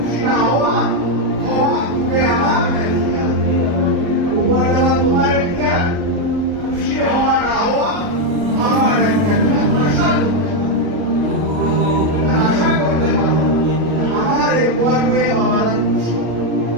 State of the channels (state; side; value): late; left; 38 ms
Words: না হওয়া তুমি আমার উপহার দেওয়া তোমার একটা, খুশি হওয়া না হওয়া আমার একটা। আশা করতে পারো আমার এই করবে বাবারা খুশি,